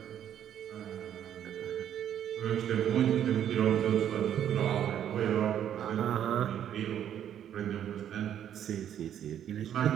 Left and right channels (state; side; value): quieter; left; 10.0 dB